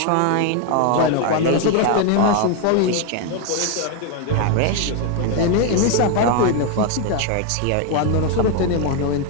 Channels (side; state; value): both; different; correlation 0.01